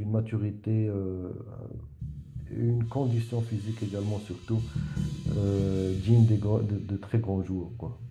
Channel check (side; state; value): both; identical; correlation 1.00